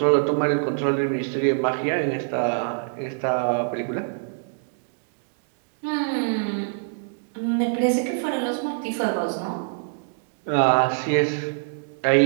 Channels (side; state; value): left; silent; digital silence